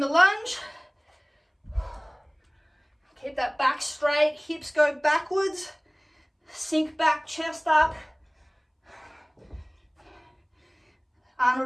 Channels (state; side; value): identical; both; correlation 1.00